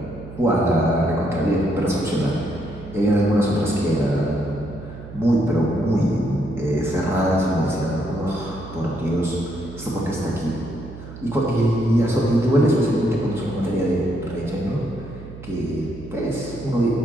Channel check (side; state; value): right; noise; hum, 14 dB below the sound